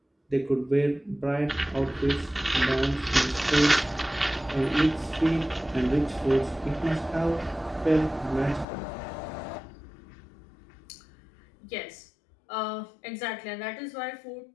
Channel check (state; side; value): drops out; right; at 8.7 s